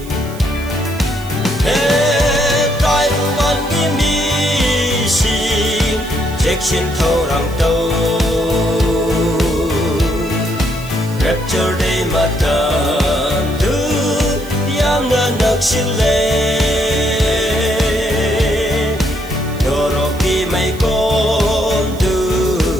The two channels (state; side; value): noise; right; hiss, 19 dB below the sound